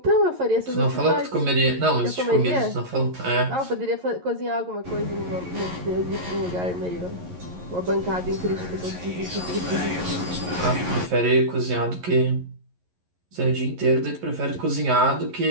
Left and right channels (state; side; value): late; left; 11 ms